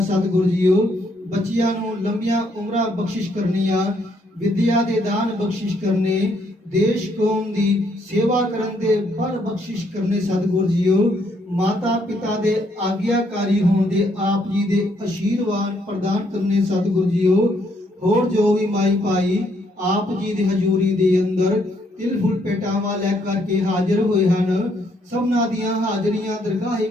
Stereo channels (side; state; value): both; normal; correlation 0.71